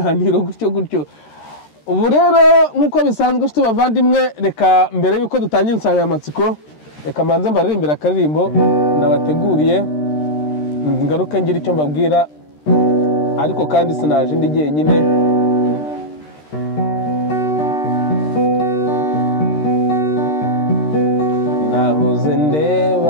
gutyo. Ubu rero nkuko bisanzwe nshuti bavandimwe, reka mbere yuko dutangira insanganyamatsiko reka manze mbaririmbira akaririmbo nabateguriye, ngaruke ngira icyo mbabwira, ariko kandi sinaje ndi jyenyine. Nahoze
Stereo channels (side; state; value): right; late; 13 ms